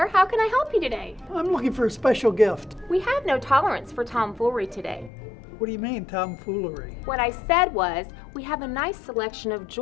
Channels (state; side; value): drops out; right; at 5.1 s